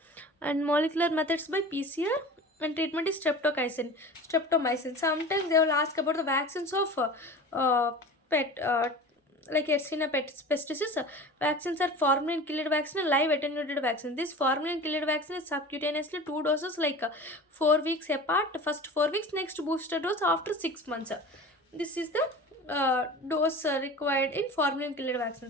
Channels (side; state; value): both; normal; correlation 0.36